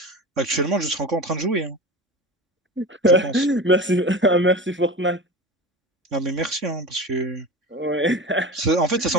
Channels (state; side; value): normal; both; correlation 0.32